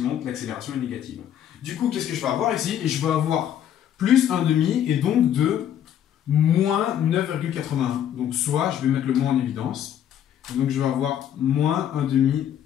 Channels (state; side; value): quieter; right; 10.1 dB